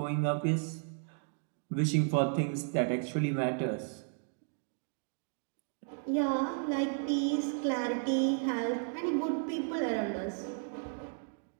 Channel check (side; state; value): left; silent; 55 dB below the other